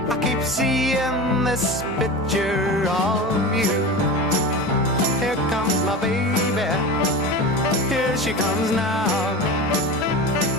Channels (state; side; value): normal; both; correlation 0.29